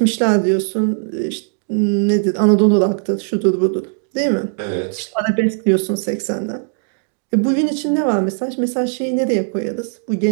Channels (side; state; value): left; silent; digital silence